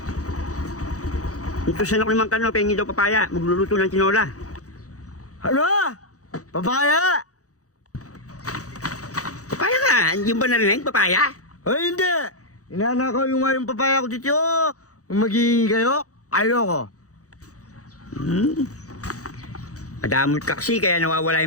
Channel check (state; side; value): late; right; 0.66 ms